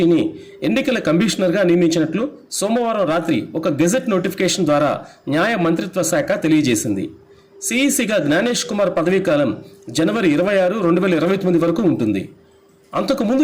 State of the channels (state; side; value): identical; both; correlation 1.00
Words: ఎన్నికల కమిషనర్గా నియమించినట్లు సోమవారం రాత్రి ఒక గెజెట్ నోటిఫికేషన్ ద్వారా న్యాయ మంత్రిత్వ శాఖ తెలియజేసింది. సిఈసిగా జ్ఞానేష్ కుమార్ పదవీకాలం జనవరి 26, 2029 వరకు ఉంటుంది. అంతకుముందు